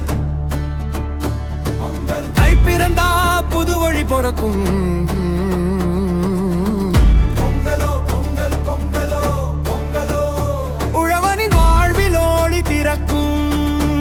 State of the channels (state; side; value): identical; both; correlation 1.00